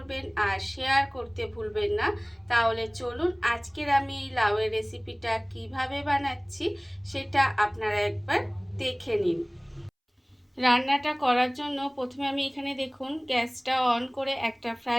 আর শেয়ার করতে ভুলবেন না। তাহলে চলুন আজকের আমি এই লাউয়ের রেসিপিটা কিভাবে বানাচ্ছি সেটা আপনারা একবার দেখে নিন। রান্নাটা করার জন্য প্রথমে আমি এখানে দেখুন গ্যাসটা অন করে একটা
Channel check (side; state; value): both; identical; correlation 1.00